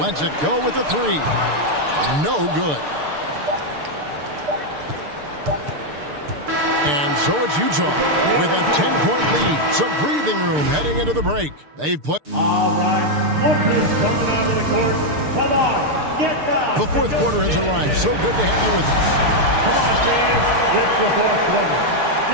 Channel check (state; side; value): late; left; 6.7 ms